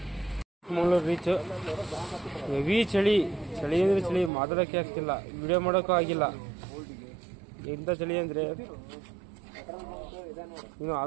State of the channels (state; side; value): drops out; left; at 4.3 s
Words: ಮಂಗಳೂರು ರೀಚ್. ಹೆವಿ ಚಳಿ ಅಂದ್ರೆ ಚಳಿ, ಮಾತಾಡೋಕೆ ಆಗ್ತಿಲ್ಲ, ವಿಡಿಯೋ ಮಾಡೋಕ್ಕೂ ಆಗಿಲ್ಲ. ಎಂತ ಚಳಿ ಅಂದ್ರೆ ಇನ್ನು